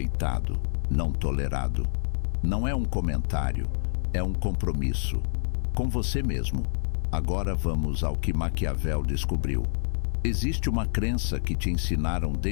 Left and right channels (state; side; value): silent; right; digital silence